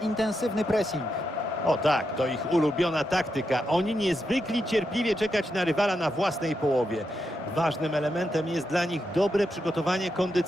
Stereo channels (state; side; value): normal; both; correlation 0.84